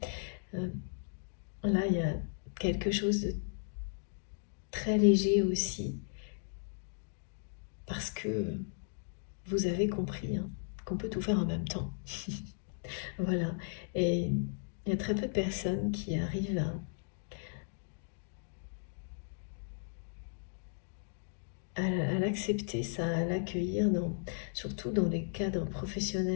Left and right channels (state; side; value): silent; right; digital silence